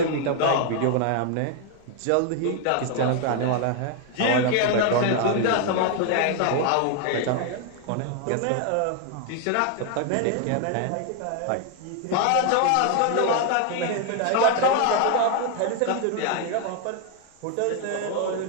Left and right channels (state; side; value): different; both; correlation 0.00